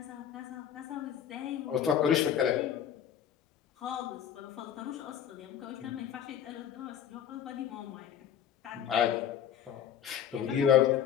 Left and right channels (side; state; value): right; quieter; 9.3 dB